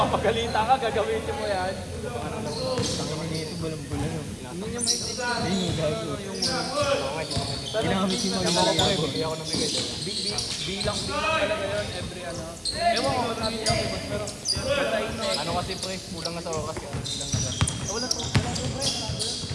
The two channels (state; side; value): identical; both; correlation 1.00